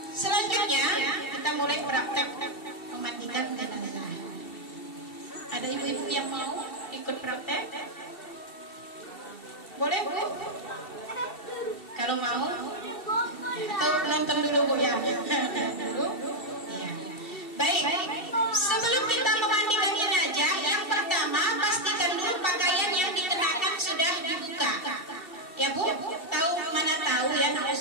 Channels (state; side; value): late; right; 2.7 ms